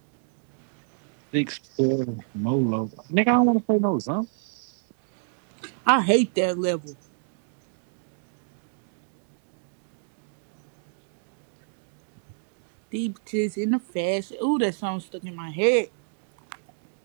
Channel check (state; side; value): silent; left; digital silence